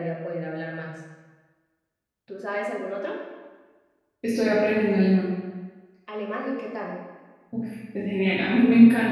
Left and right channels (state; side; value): identical; both; correlation 1.00